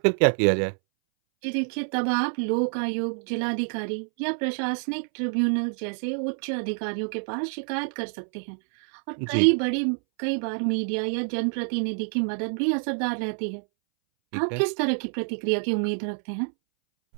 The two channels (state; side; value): silent; left; 60 dB below the other